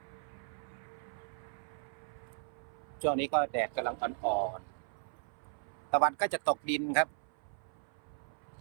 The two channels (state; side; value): silent; left; 53 dB below the other